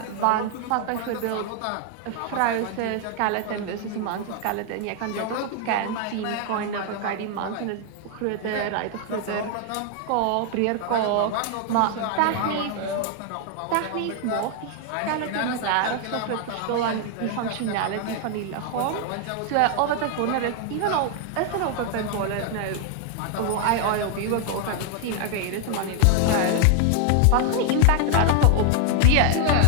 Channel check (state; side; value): different; both; correlation 0.00